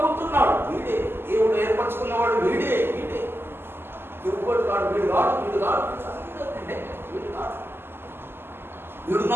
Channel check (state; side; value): late; left; 0.11 ms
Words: వీడే దేవుడు ఏర్పరచుకున్నవాడు, వీడే ఎవరు కాడు, వీడు